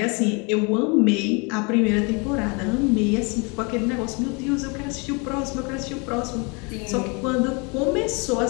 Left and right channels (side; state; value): right; quieter; 31.0 dB